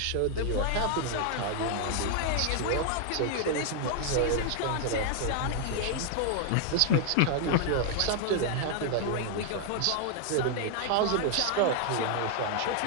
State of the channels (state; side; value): different; both; correlation 0.00